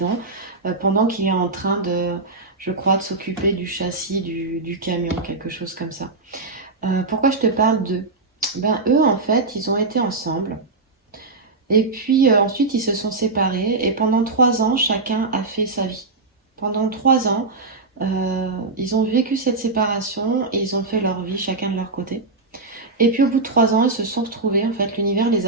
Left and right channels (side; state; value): left; quieter; 3.6 dB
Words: pendant qu'il est en train de... je crois, de s'occuper du châssis du camion, quelque chose comme ça. Pourquoi je te parle d'eux? Ben, eux, en fait, ils ont été ensemble. Et puis ensuite, ils se sont séparés. Et pendant 3 ans, chacun a fait sa vie. Pendant 3 ans, ils ont vécu cette séparation et ils ont fait leur vie, chacun de leur côté. Et puis au bout de 3 ans, ils se sont retrouvés. En fait, l'univers les